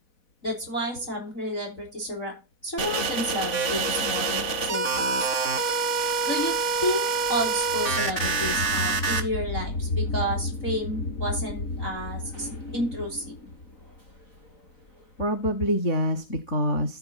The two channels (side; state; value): right; late; 4.1 ms